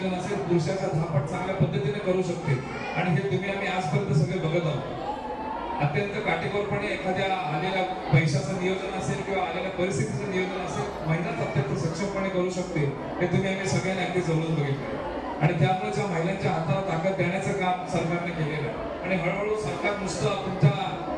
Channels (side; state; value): both; identical; correlation 1.00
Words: असेल पुरुषाचा 10 पट चांगल्या पद्धतीने करू शकते. आणि हे तुम्ही आम्ही आजपर्यंत सगळे बघत आहोत. अत्यंत काटेकोरपणे एखाद्या आलेल्या पैशाचं नियोजन असेल किंवा आलेल्या परिस्थितीचं नियोजन असेल महिलाच अत्यंत सक्षमपणे करू शकते, हे तुम्ही आम्ही सगळ्यांनी अगदी जवळून बघितलं. आणि त्यामुळे ज्या महिलांच्या हाताला ताकद देण्याचं काम सरकारने केलेलं आहे. आणि हळूहळू सरकार नुसतं तुमच्या